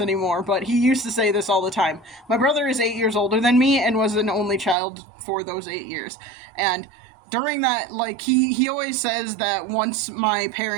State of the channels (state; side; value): drops out; left; at 4.8 s